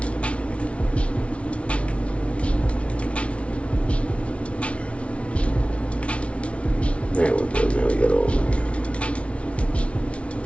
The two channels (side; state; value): right; late; 0.062 ms